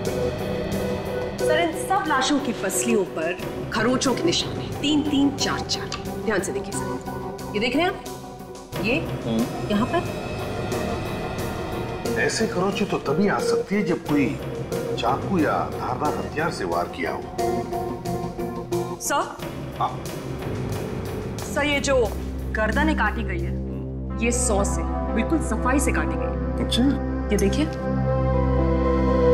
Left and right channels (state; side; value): identical; both; correlation 1.00